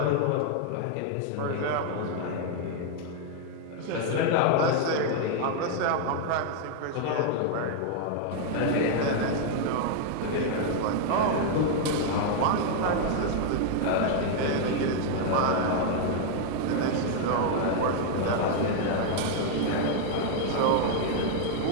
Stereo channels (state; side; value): different; both; correlation 0.00